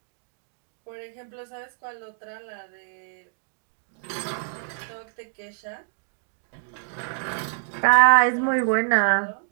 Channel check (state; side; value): silent; left; digital silence